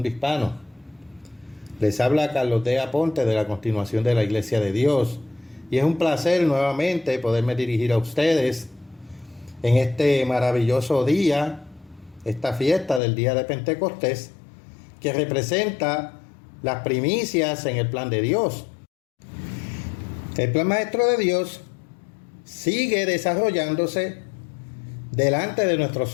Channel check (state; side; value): drops out; right; at 13.0 s